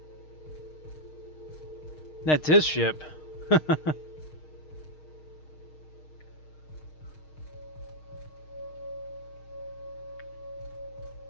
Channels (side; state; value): right; late; 6.5 ms